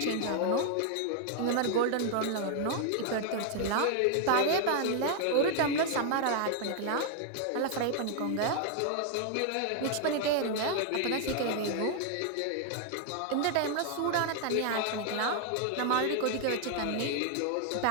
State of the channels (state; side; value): different; both; correlation 0.00